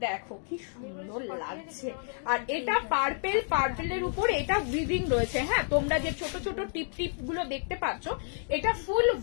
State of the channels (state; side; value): silent; right; 58 dB below the other